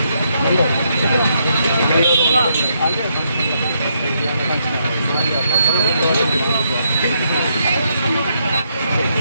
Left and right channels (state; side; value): inverted; both; correlation -0.76